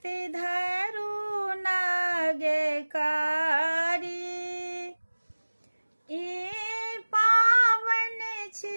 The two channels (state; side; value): inverted; both; correlation -1.00